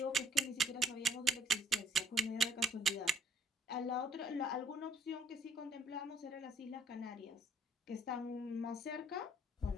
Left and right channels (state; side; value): normal; both; correlation 0.60